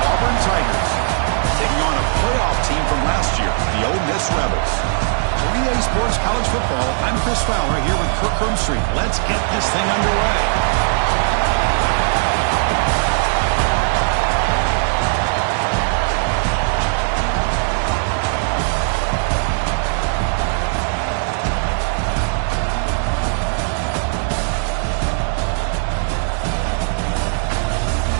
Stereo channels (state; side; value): silent; left; digital silence